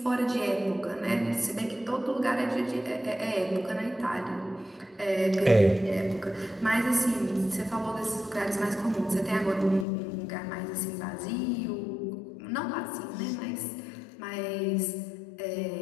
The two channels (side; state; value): right; drops out; at 9.9 s